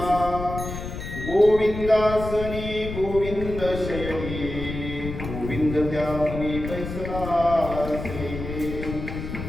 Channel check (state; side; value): noise; left; rumble, 7 dB below the sound